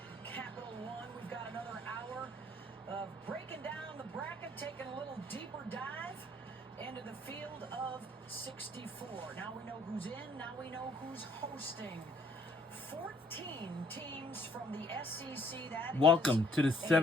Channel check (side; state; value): both; normal; correlation 0.62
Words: Capital One. We've got another hour of breaking down the bracket, taking a little deeper dive into the field of 64. Now we know who's in, now we know who's hosting. 14 teams from the SEC. That Welcome to the